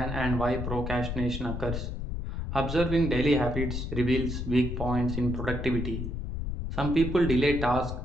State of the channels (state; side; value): noise; left; rumble, 4 dB below the sound